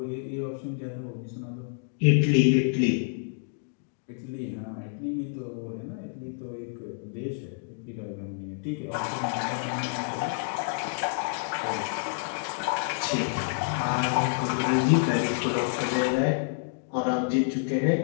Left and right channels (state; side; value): silent; right; digital silence